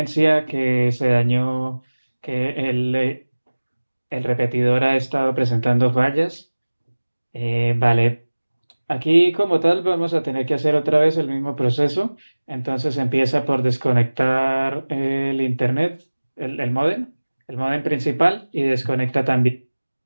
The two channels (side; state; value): both; inverted; correlation -1.00